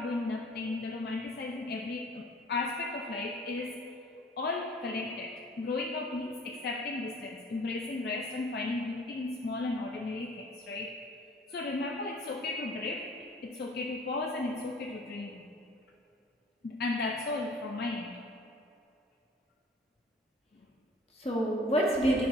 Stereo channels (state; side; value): normal; both; correlation 0.51